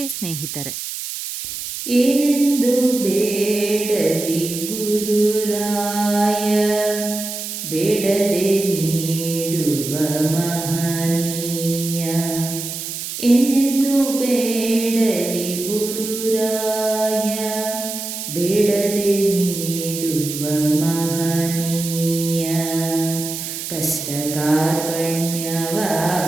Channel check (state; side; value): noise; right; hiss, 6 dB below the sound